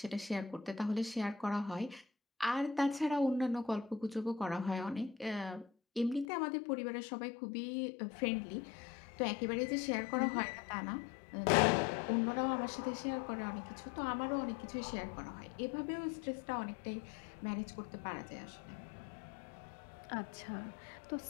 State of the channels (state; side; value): drops out; right; at 6.2 s